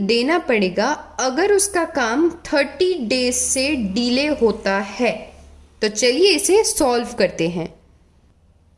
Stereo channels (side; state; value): both; identical; correlation 1.00